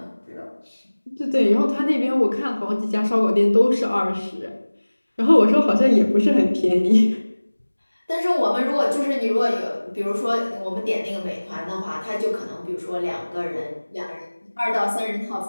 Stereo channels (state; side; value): inverted; both; correlation -1.00